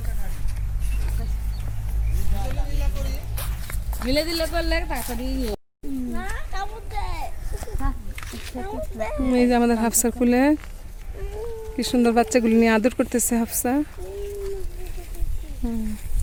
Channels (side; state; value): both; identical; correlation 1.00